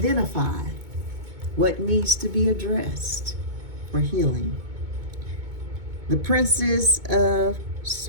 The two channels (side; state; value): left; late; 2.2 ms